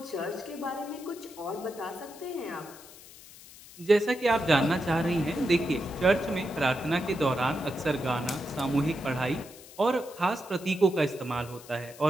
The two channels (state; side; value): noise; left; hiss, 19 dB below the sound